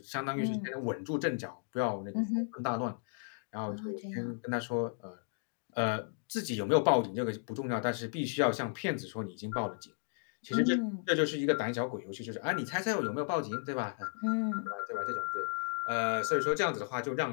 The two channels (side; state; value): right; silent; digital silence